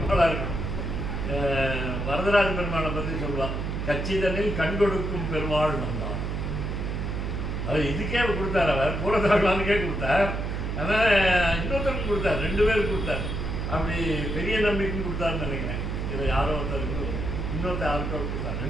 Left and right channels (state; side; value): noise; right; hum, 2 dB below the sound